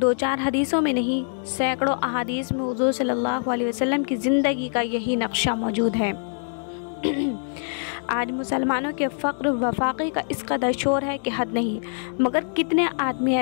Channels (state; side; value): silent; right; digital silence